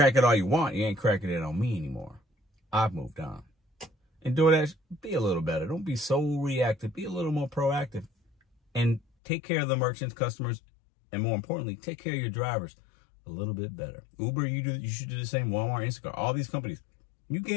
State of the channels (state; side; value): drops out; right; at 9.0 s